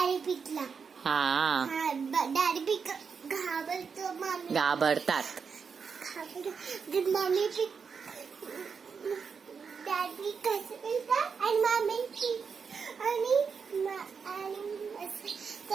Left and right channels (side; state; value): left; quieter; 5.9 dB